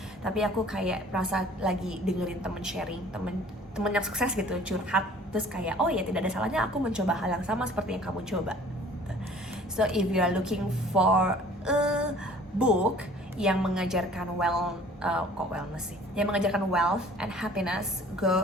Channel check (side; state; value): both; normal; correlation 0.51